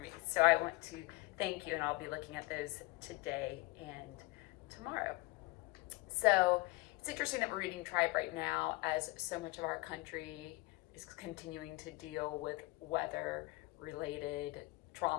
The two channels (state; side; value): quieter; right; 22.3 dB